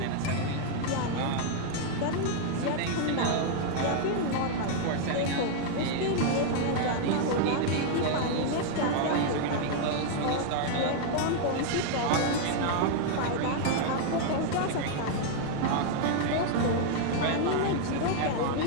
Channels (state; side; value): different; both; correlation 0.00